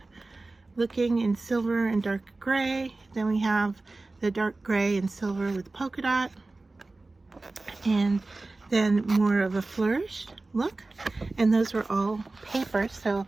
looking in silver and dark gray. Then we have the dark gray and silver with polka dot. And then more of a flourished look. And those were all paper, so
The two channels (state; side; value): quieter; left; 3.3 dB